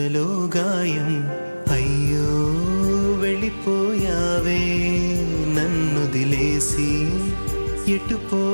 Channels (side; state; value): both; inverted; correlation -1.00